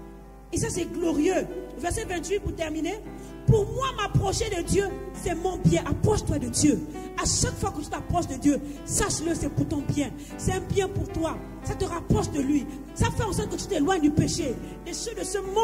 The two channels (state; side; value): identical; both; correlation 1.00